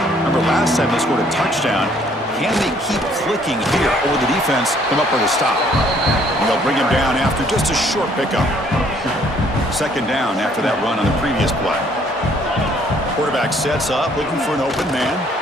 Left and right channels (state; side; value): normal; both; correlation 0.63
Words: Remember last time they scored a touchdown. Can they keep clicking here, or will the defense come up with a stop? And they'll bring him down after just a short pickup. 2nd down after that run on the previous play. Quarterback sets up, looking for an open man.